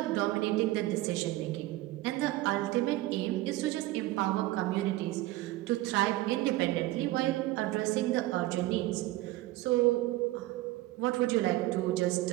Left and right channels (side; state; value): left; quieter; 17.4 dB